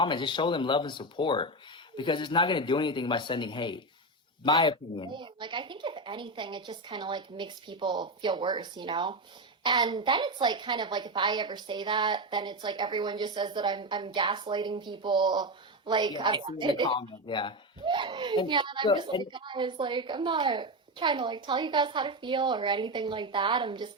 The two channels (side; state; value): both; normal; correlation 0.14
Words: Just show them love and support, because it's not going to do anything by sending hate. My opinion. Like, I think if anything, it just kind of, like, makes people feel worse, you know? And then it's, like, kind of like, if I ever say that, then it's like everyone just says that I'm gaslighting people. Like, yeah, I've seen the comment, yeah. And I'm just like, guys, like, I'm not trying to, like, tell you guys how to feel or anything like that. I'm just